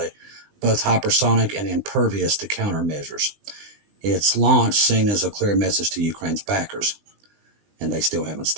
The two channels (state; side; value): late; left; 20 ms